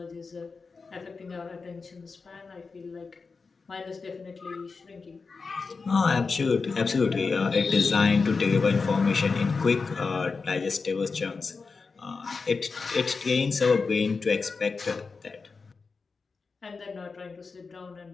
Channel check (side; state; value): right; quieter; 4.6 dB